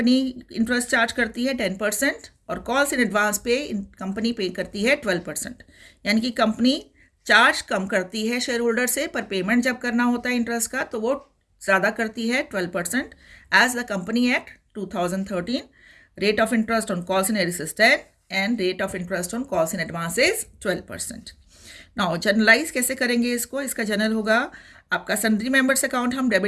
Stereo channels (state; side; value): identical; both; correlation 1.00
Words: इंटरेस्ट चार्ज करती है? 10%। और कॉल्स इन एडवांस पे कंपनी पे करती है 12%। यानी कि कंपनी चार्ज कम करती है शेयर होल्डर से, पर पेमेंट जब करना होता है इंटरेस्ट का तो वो ज़्यादा करती है 12%। As the company act 2013 rate of interest on calls in arrears is 10 and rate of interest on calls in advance is 12%। Now generalise कैसे करेंगे इसको? इसका जनरल होगा आपका सन्ड्री मेंबर्स अकाउंट हम